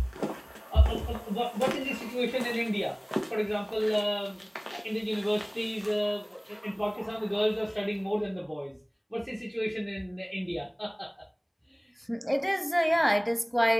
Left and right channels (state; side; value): identical; both; correlation 1.00